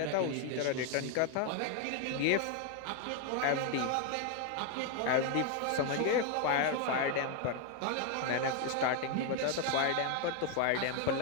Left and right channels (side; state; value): both; different; correlation 0.01